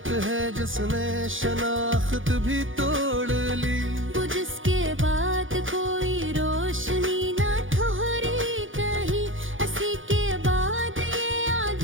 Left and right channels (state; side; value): late; left; 0.58 ms